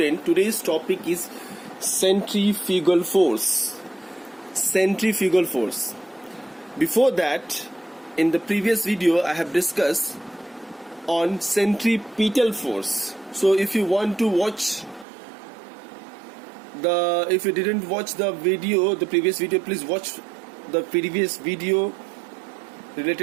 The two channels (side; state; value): left; drops out; at 15.1 s